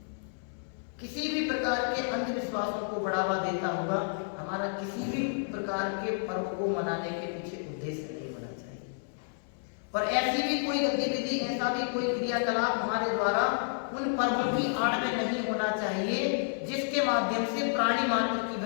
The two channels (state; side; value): silent; right; 57 dB below the other